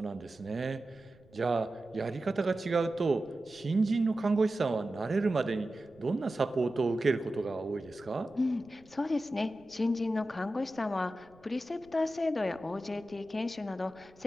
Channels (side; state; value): right; noise; rumble, 29 dB below the sound